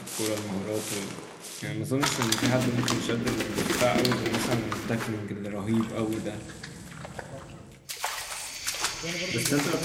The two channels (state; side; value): identical; both; correlation 1.00